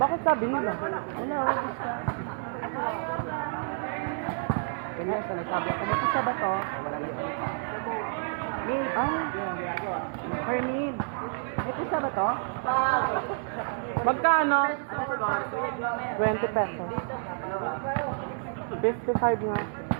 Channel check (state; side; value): silent; left; 58 dB below the other